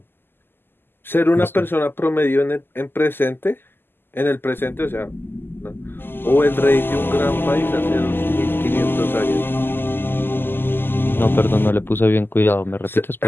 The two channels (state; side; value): late; right; 0.10 ms